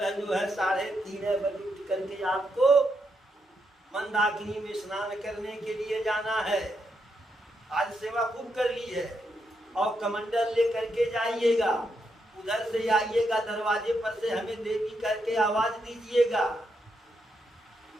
जो है 3:30 बजे उठ करके आपको मंदाकिनी में स्नान करने के लिए जाना है। आज सेवा खूब कर ली है और कमंडल ले करके जाइएगा, उधर से आइएगा, दरवाजे पर से हमें देवी करके आवाज दीजिएगा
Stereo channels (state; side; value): normal; both; correlation 0.81